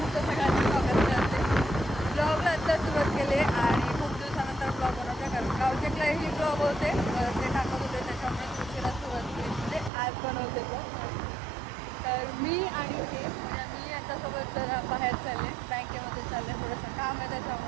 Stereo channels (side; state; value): left; drops out; at 9.9 s